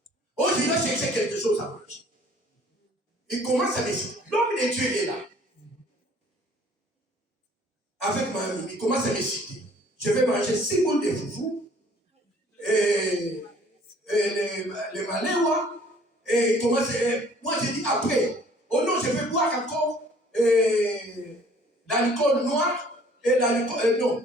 Oh, je dois chercher quelque chose à manger. Il commence à me citer. L'homme de Dieu est là. Avec ma amie, il commence à me citer. Je vais manger 6 boules de foufou, et les maléwa, et il commence moi je dis après, oh non, je vais boire encore l'alcool noir, et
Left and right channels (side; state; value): both; normal; correlation 0.55